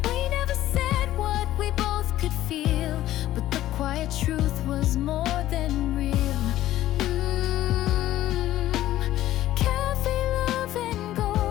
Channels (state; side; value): quieter; right; 14.1 dB